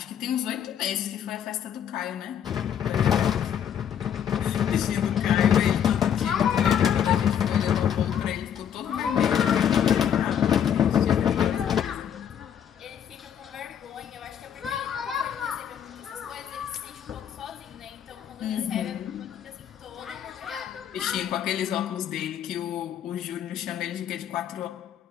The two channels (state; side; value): quieter; right; 9.0 dB